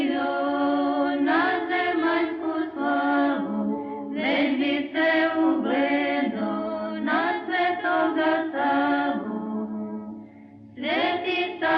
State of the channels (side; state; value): both; identical; correlation 1.00